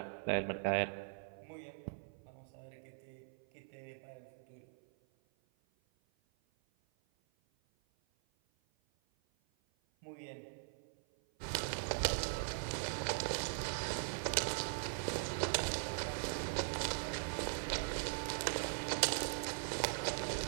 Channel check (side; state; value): left; silent; 50 dB below the other